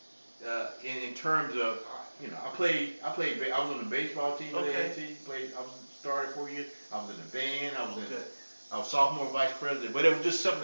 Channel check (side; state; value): both; inverted; correlation -1.00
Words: in terms of, you know, I was on the baseball team at A&T, I started 4 years, I was in the band, I was sophomore vice president, but it was just